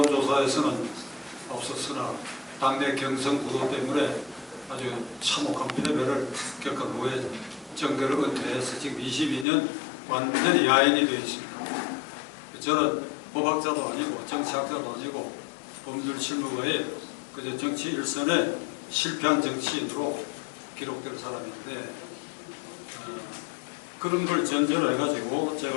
앞섰으나 당내 경선 구도 때문에 아주 참혹한 패배를 겪은 후에 정계를 은퇴해서 지금 22년 완전히 야인이 되어 있습니다. 저는 법학자도 아니고 정치학자도 아니고 법률 실무가의 그저 정치 일선에 실패한 정치인으로 기록될 사람인데 그런 걸 전제로 해가지고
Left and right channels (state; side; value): drops out; right; at 9.5 s